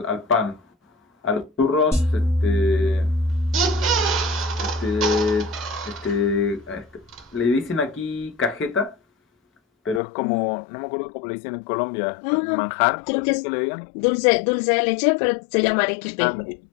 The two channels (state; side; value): drops out; right; at 10.0 s